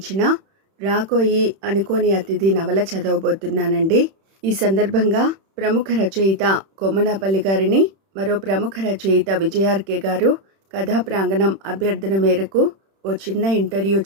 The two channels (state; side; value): late; left; 31 ms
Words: రాకోయి అనుకోని అతిథి నవల చదవబోతున్నానండి. ఈ సందర్భంగా ప్రముఖ రచయిత కొమ్మనాపల్లి గారిని మరో ప్రముఖ రచయిత విజయార్కే గారు కథా ప్రాంగణం అభ్యర్థన మేరకు ఓ చిన్న ఇంటర్వ్యూ